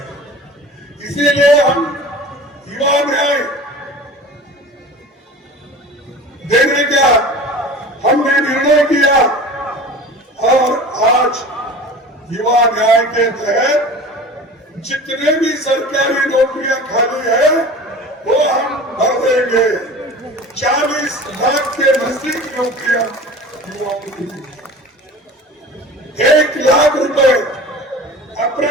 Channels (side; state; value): both; normal; correlation 0.38